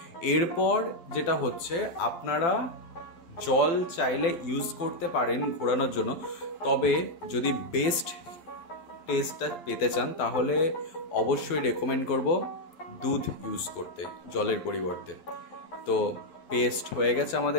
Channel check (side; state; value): right; late; 12 ms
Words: এরপর যেটা হচ্ছে, আপনারা জল চাইলে ইউজ করতে পারেন ঘোরানোর জন্য, তবে যদি বেস্ট টেস্টটা পেতে চান তাহলে অবশ্যই রেকমেন্ড করব দুধ ইউজ করতে জলের পরিবর্তে। তো পেস্ট হয়ে গেছে